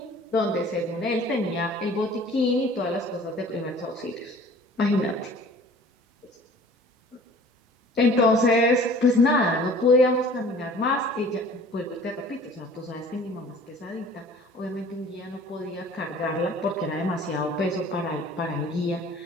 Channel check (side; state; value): both; normal; correlation 0.48